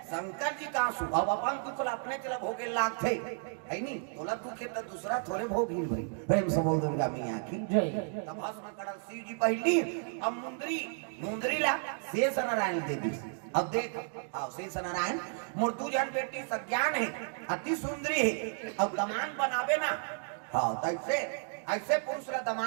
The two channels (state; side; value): silent; left; 56 dB below the other